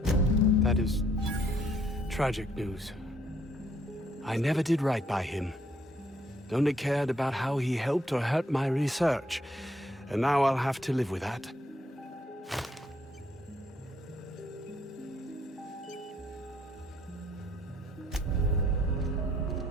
That is tragic news. I never did right by him. Only cared about how he helped or hurt my research. And now I'll have to live with that.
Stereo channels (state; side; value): normal; both; correlation 0.68